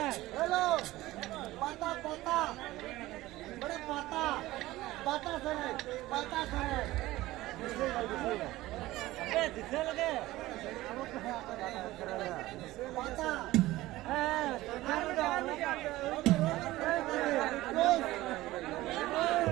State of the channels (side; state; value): left; quieter; 17.3 dB